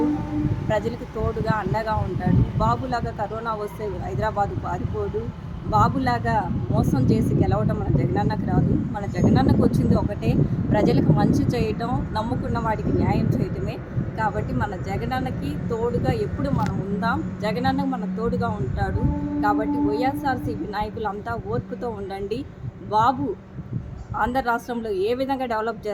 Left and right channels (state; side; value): identical; both; correlation 1.00